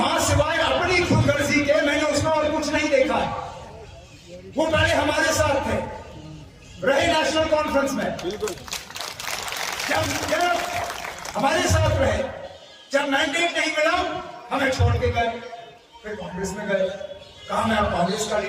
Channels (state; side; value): identical; both; correlation 1.00